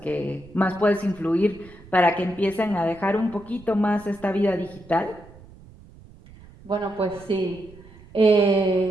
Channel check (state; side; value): noise; right; rumble, 22 dB below the sound